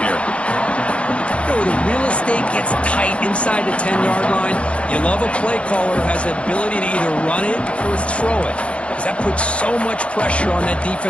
here. You know, the real estate gets tight inside the 10-yard line. You love a play caller who has the ability to either run it or throw it, because that puts so much pressure on that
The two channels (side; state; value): right; late; 0.060 ms